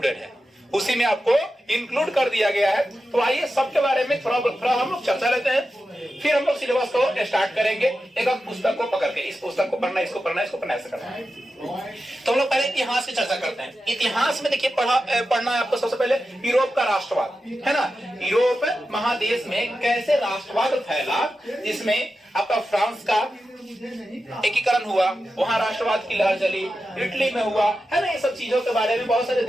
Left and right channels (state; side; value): normal; both; correlation 0.91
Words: है, उसी में आपको इंक्लूड कर दिया गया है। तो आइए सबके बारे में थोड़ा हम लोग चर्चा लेते हैं, फिर हम लोग सिलेबस को स्टार्ट करेंगे एक एक पुस्तक को पकड़ के। इस पुस्तक को पढ़ना, इसको पढ़ना, इसको पढ़ना, ऐसे करना है। तो हम लोग पहले इतिहास की चर्चा करते हैं। इतिहास में देखिए पढ़ना है आपको सबसे पहले यूरोप का राष्ट्रवाद, है ना। यूरोप महादेश में कैसे राष्ट्रवाद फैला, जिसमें आपका फ्रांस का एकीकरण हुआ, वहां राष्ट्रवाद की लहर चली, इटली में हुआ, है ना। ये सब चीजों के बारे में बहुत सारे